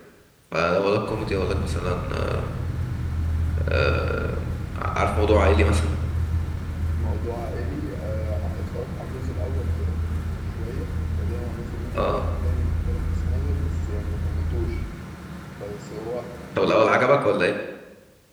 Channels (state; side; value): identical; both; correlation 1.00